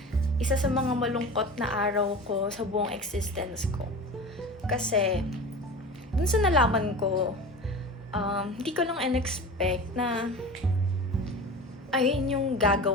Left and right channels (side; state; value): both; normal; correlation 0.33